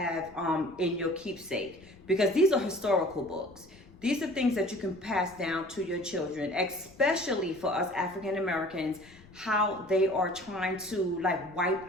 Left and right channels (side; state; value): left; noise; rumble, 24 dB below the sound